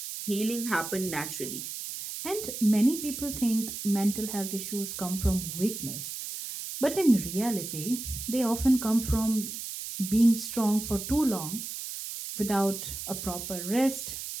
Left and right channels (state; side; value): noise; right; hiss, 7 dB below the sound